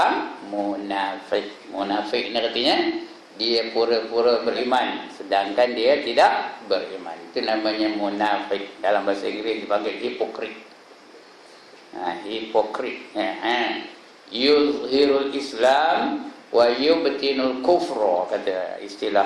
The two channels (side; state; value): both; identical; correlation 1.00